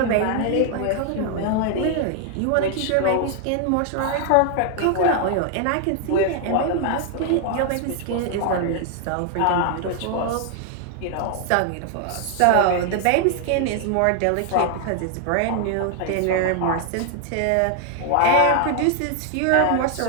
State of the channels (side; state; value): both; different; correlation 0.00